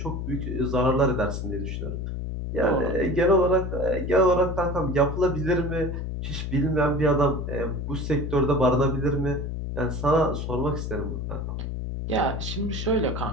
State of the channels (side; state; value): left; noise; hum, 4 dB below the sound